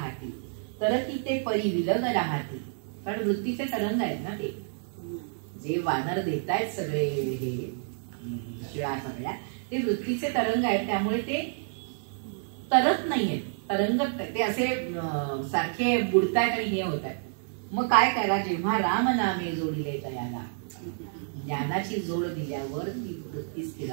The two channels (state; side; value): silent; left; 58 dB below the other